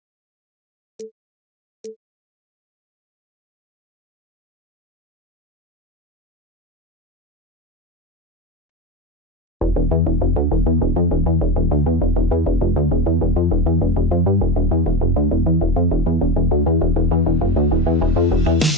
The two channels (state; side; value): normal; both; correlation 0.22